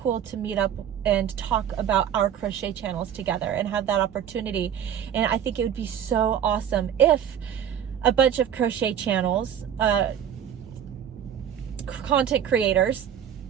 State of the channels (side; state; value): left; quieter; 9.2 dB